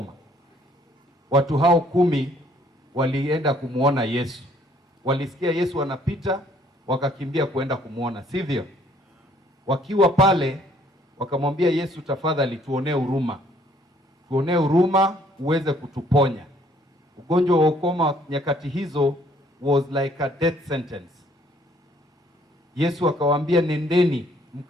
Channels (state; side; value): normal; both; correlation 0.62